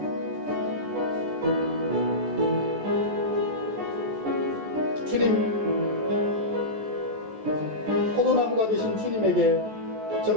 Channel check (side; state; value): left; late; 14 ms